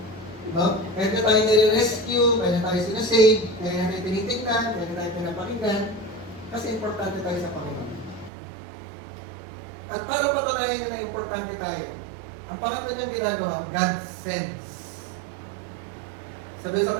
No? Kaya na tayo nire-rescue, kaya na tayo sinasave, kaya na tayo tinitignan, kaya na tayo pinapakinggan, kasi importante tayo sa Panginoon. At para patunayan na importante tayo, ang pangatlo niyang ginagawa, God sends. Sabi sa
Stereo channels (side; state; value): left; drops out; at 8.3 s